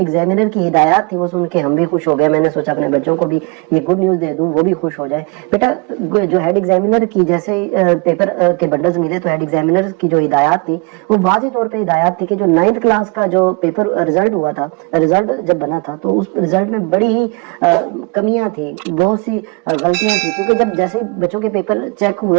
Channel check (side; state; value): left; quieter; 30.1 dB